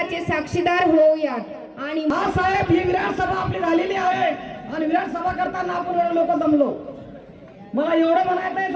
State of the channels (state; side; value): identical; both; correlation 1.00